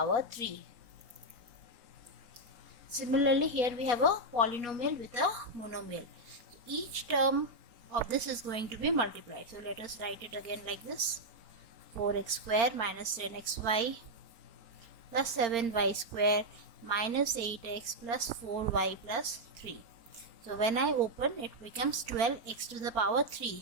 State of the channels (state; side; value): late; left; 4.4 ms